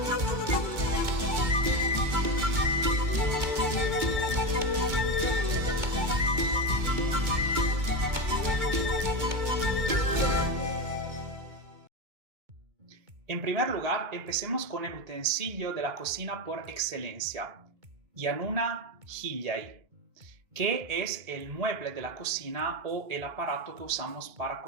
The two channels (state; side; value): late; left; 2.2 ms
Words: En primer lugar, empecemos con el utensilio de la cocina por excelencia, yanuna hillay, que es el mueble de la cocina o el aparato que usamos para